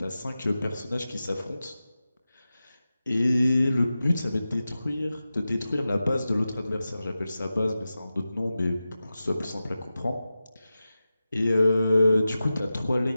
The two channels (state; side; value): inverted; both; correlation -0.94